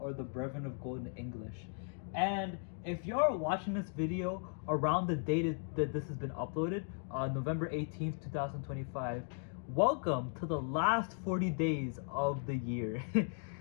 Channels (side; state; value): right; silent; 53 dB below the other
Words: the Brethren of Golden English. And if you're watching this video around the date that this has been uploaded, November 18th, 2025, welcome to the last 40 days of the year.